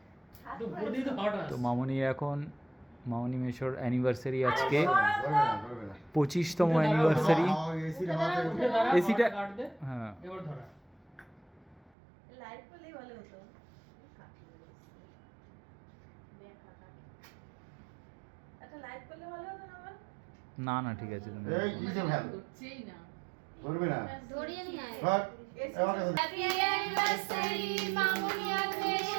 তো বডি তো হট আছে। তো মামনির এখন মামনি মেশোর অ্যানিভার্সারি আজকে 25তম অ্যানিভার্সারি। এসিটা গার্ড দে, হ্যাঁ এবার ধরা লাইট পেলেই ভালো হতো। একটা লাইট পেলে ভালো হতো না আমার। না না ঠিক আছে তুমি এই কিসে ভ্যাল হচ্ছেই না। করবে না ধরিয়ে নিয়ে আয়। বাট হ্যাপি অ্যানিভার্সারি মামুনি আর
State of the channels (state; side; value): drops out; left; at 11.9 s